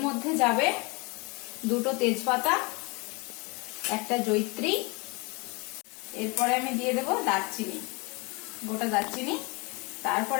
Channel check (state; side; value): quieter; right; 28.7 dB